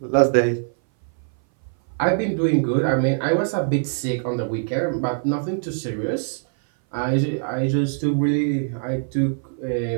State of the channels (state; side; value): silent; left; 59 dB below the other